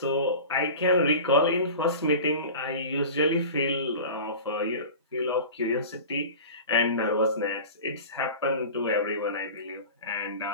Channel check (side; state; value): both; inverted; correlation -0.35